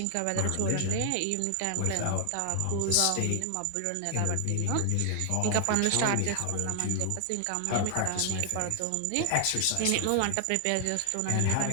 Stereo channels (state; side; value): different; both; correlation 0.00